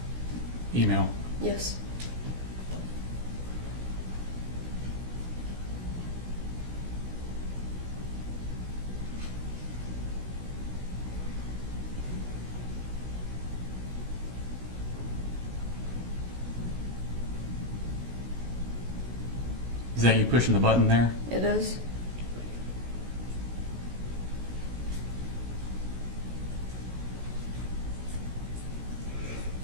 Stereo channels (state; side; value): late; left; 16 ms